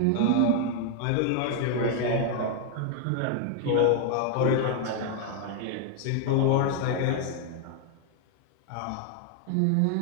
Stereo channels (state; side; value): different; both; correlation 0.00